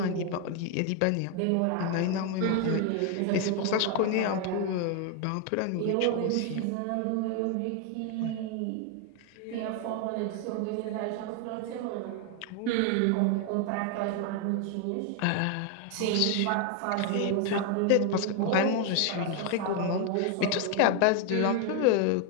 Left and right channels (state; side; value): different; both; correlation 0.01